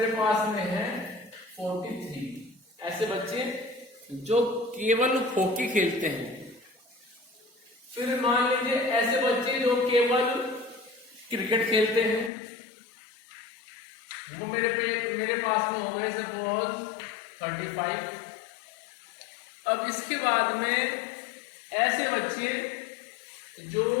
पास में है 43। ऐसे बच्चे जो केवल हॉकी खेलते हैं। फिर मान लीजिए ऐसे बच्चे जो केवल क्रिकेट खेलते हैं, वो मेरे पास में हो गए सपोज 35। अब इसके बाद में ऐसे बच्चे जो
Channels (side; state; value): right; drops out; at 12.3 s